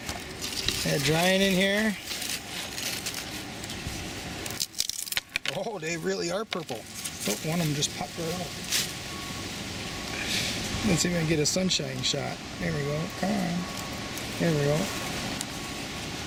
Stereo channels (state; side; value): identical; both; correlation 1.00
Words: They're drying in here. Oh, they really are purple. Oh, one of them just popped right out. Let's see if I can get a sunshine shot. There we go. Come on. There we go.